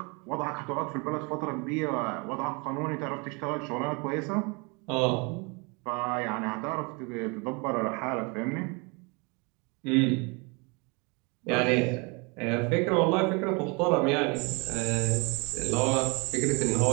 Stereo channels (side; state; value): left; quieter; 30.7 dB